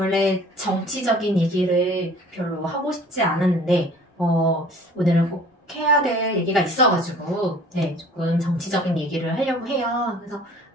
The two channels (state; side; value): normal; both; correlation 0.49